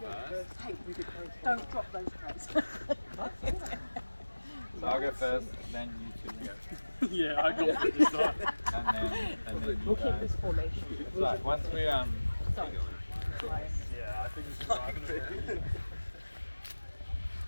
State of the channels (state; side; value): inverted; both; correlation -1.00